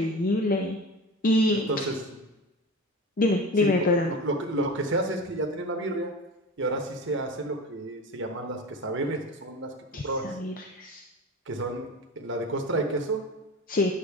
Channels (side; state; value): both; normal; correlation 0.31